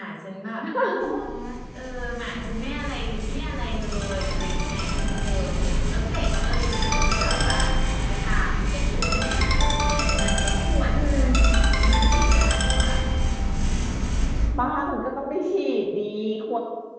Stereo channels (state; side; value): identical; both; correlation 1.00